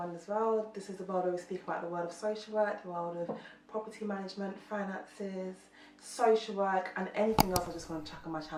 World. This is the world where we speak about the world of social work, the world of property management, finances, social work, and anything else I just want to chuck on my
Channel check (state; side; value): identical; both; correlation 1.00